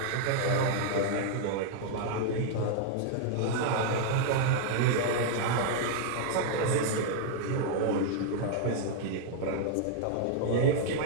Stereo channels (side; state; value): both; different; correlation 0.00